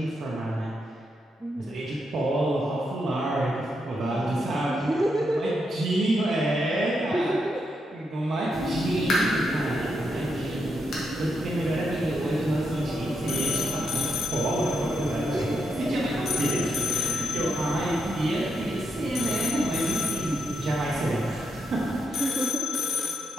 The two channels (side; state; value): both; normal; correlation 0.82